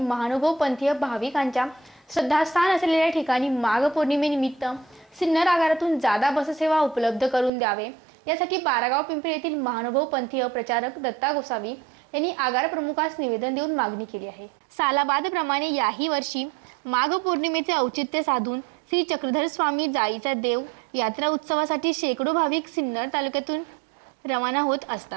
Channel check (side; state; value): left; drops out; at 7.5 s